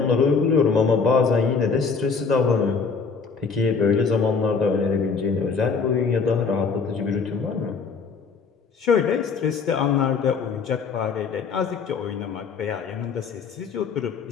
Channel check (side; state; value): right; quieter; 5.2 dB